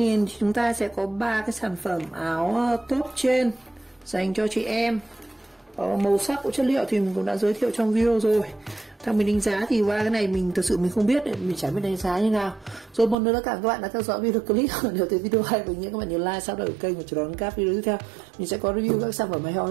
thì chúng ta sẽ có 3 cái sản phẩm áo top trên dành cho chị em. Màu sắc của chất liệu thì mình cũng đã giới thiệu trong video rồi. Theo mình đánh giá thì qua cái này mình thực sự mình không biết, mình chẳng biết đánh giá như nào. Rồi một lần nữa cảm ơn các bạn đã theo dõi video clip. Nếu thấy video hay với những các bạn nhớ like, subscribe kênh và chờ đón các video tiếp theo. Mình sẽ có review các sản phẩm hay ho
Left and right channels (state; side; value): drops out; left; at 13.2 s